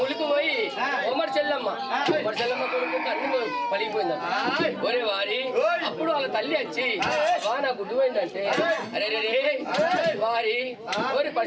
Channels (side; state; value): both; identical; correlation 1.00